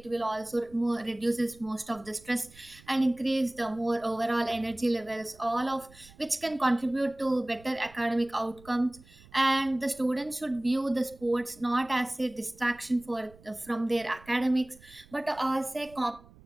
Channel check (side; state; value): right; noise; rumble, 24 dB below the sound